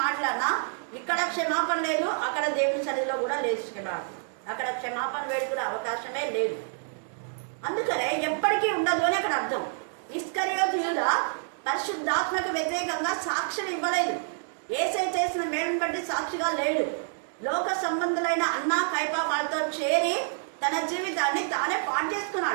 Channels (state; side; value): silent; left; digital silence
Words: మాట్లాడినా ఇక్కడ క్షమాపణ లేదు, అక్కడ దేవుని సన్నిధిలో కూడా లేదు క్షమాపణ. అక్కడ క్షమాపణ వేడుకునే అవకాశమే లేదు. అందుకనే ఎప్పటికీ ఉండదు అని అక్కడ అర్థం. ఇస్కరియోతు యూదా పరిశుద్ధాత్మకు వ్యతిరేకంగా సాక్ష్యం ఇవ్వలేదు. యేసే చేసిన మేలును బట్టి సాక్షిగా లేడు. లోక సంబంధులైన అన్న కైపా వాళ్ళతో చేరి తన జీవితాన్ని తానే పాడు